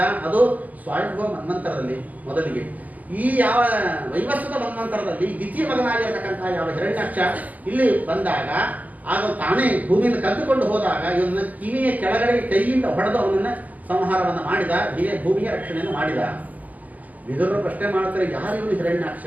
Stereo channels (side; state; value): left; late; 0.079 ms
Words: ಅದು ಸ್ವಯಂಭವ ಮನ್ವಂತರದಲ್ಲಿ ಮೊದಲಿಗೆ. ಈ ಯಾವ ವೈವಸ್ವತ ಮನ್ವಂತರದಲ್ಲಿ ದ್ವಿತೀಯ ಮಗನಾಗಿರತಕ್ಕಂಥ ಯಾವ ಹಿರಣ್ಯಾಕ್ಷ ಇಲ್ಲಿ ಬಂದಾಗ, ಆಗ ತಾನೇ ಭೂಮಿಯನ್ನು ಕದ್ದುಕೊಂಡು ಹೋದಾಗ ಇವನ್ನ ಕಿವಿಯ ಕೆಳಗಡೆ ಕೈಯಿಂದ ಹೊಡೆದು ಅವನನ್ನ ಸಂಹಾರವನ್ನು ಮಾಡಿದ. ಹೀಗೆ ಭೂಮಿಯ ರಕ್ಷಣೆಯನ್ನು ಮಾಡಿದ. ವಿದುರರು ಪ್ರಶ್ನೆ ಮಾಡ್ತಾರೆ, ಯಾರು ಇವನು ಹಿರಣ್ಯಾಕ್ಷ,